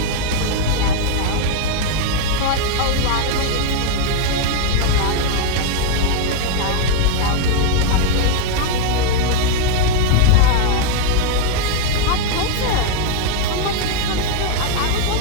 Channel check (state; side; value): different; both; correlation 0.00